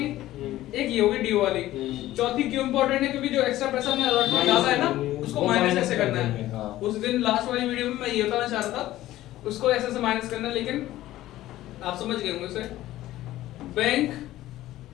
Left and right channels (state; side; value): quieter; right; 15.1 dB